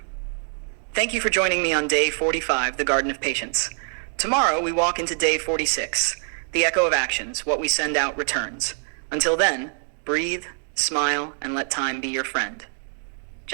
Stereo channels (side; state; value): left; silent; 57 dB below the other